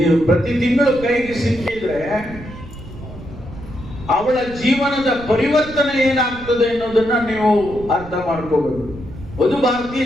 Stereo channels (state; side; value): noise; right; rumble, 15 dB below the sound